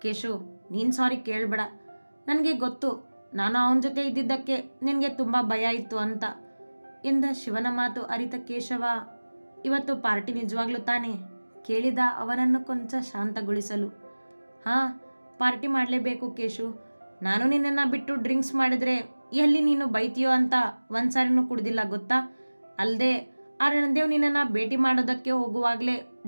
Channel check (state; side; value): inverted; both; correlation -1.00